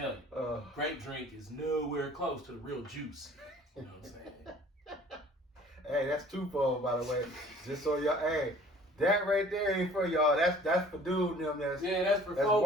you, grape drink is nowhere close to the real juice. You know what I'm saying? Hey, that's twofold, by the way. Just so y'all, hey, that right there ain't for y'all. That's for dude and them. That's for folks.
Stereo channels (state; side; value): normal; both; correlation 0.51